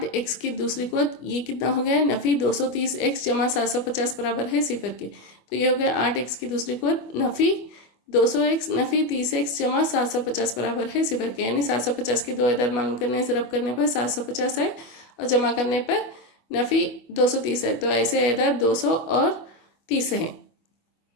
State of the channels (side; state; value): right; late; 24 ms